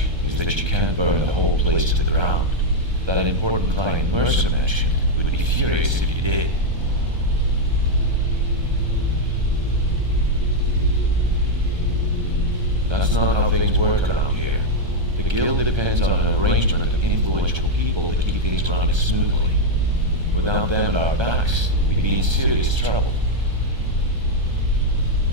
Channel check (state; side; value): late; left; 1.3 ms